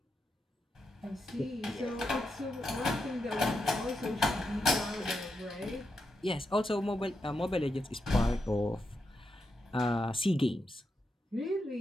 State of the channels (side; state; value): both; normal; correlation 0.85